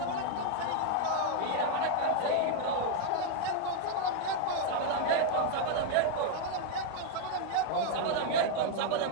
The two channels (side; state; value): both; different; correlation 0.01